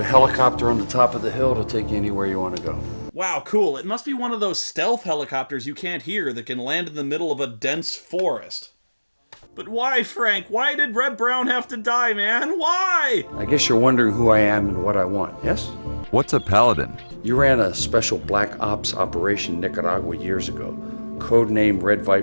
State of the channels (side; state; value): both; inverted; correlation -1.00